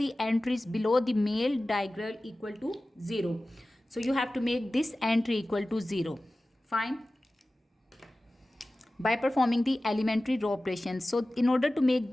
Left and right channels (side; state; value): both; normal; correlation 0.96